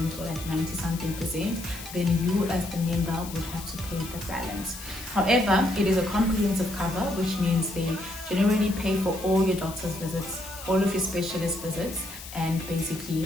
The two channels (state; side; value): noise; left; hiss, 13 dB below the sound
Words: or like 90-something%. Then you as the member would have to pay the balance. However, it is a comprehensive cover, which means they generally pay for all your doctor's visits, all of your specialist visits, and